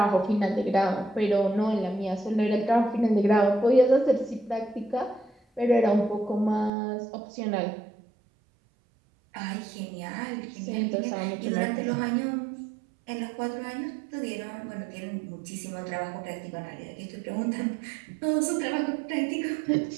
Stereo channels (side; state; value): left; drops out; at 6.7 s